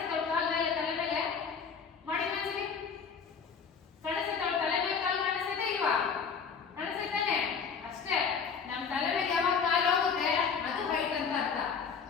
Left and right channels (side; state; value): right; quieter; 6.1 dB